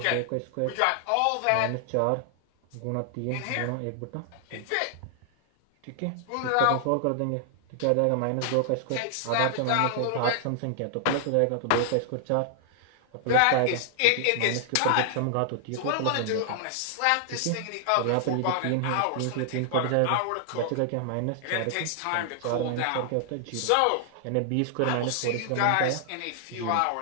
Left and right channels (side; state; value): both; different; correlation 0.00